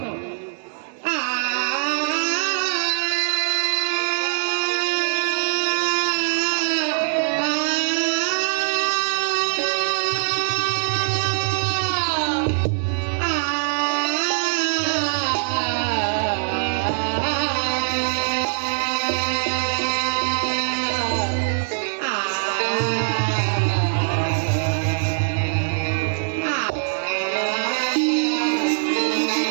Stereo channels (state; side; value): silent; left; digital silence